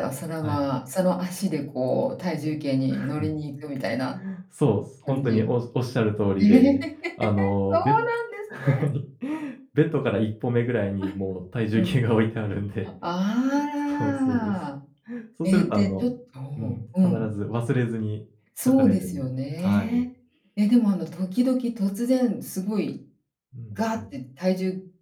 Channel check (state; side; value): identical; both; correlation 1.00